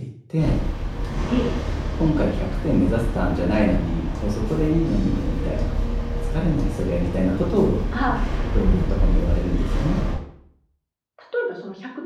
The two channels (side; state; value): both; identical; correlation 1.00